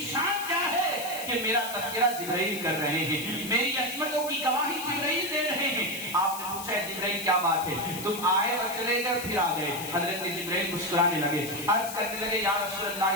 شان کیا ہے کہ میرا تذکرہ جبرائیل کر رہے ہیں, میری عظمتوں کی گواہی جبرائیل دے رہے ہیں. آپ نے پوچھا ہے جبرائیل کیا بات ہے, تم آئے اور چلے گئے پھر آ گئے. حضرت جبرائیل مسکرانے لگے, عرض کرنے لگے یا رسول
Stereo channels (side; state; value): left; noise; hiss, 9 dB below the sound